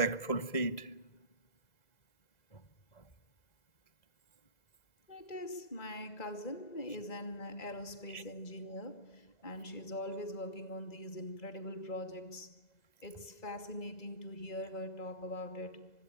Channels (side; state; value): right; late; 2.0 ms